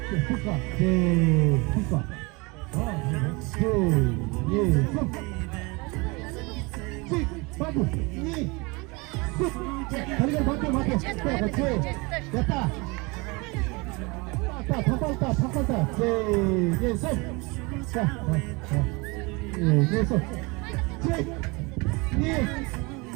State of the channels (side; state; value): left; quieter; 26.8 dB